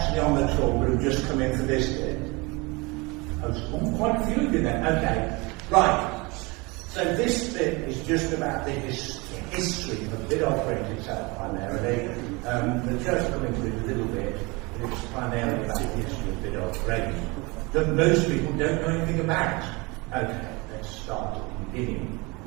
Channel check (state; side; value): quieter; left; 26.2 dB